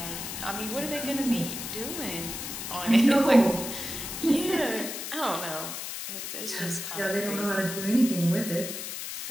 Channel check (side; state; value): left; noise; hiss, 6 dB below the sound